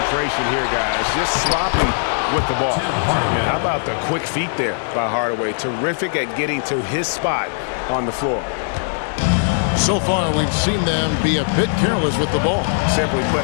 here, guys. Just sloppy with the ball. Yeah, how about the quick feet there by Hardaway? Terrific at getting to his spot on the floor. So far, we've seen them be a bit careless with the ball. Simply put,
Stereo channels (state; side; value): silent; right; digital silence